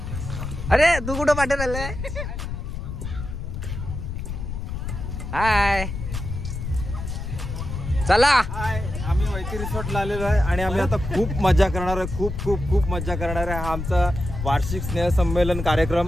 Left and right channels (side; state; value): left; noise; rumble, 6 dB below the sound